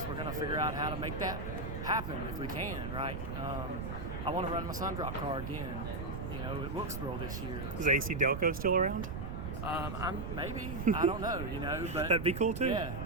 We're gonna figure out how to make that happen if we can, right? I want to run my Sundrop car again, at Wilkesboro this year. Is AC Delco still around? I don't know, but that'd be cool too. Yeah.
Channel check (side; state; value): right; noise; rumble, 5 dB below the sound